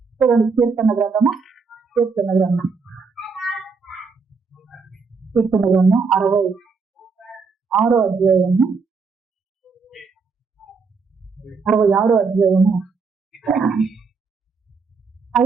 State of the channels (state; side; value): quieter; left; 4.9 dB